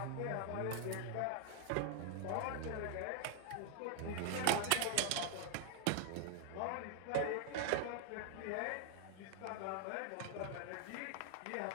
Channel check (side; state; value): both; different; correlation 0.00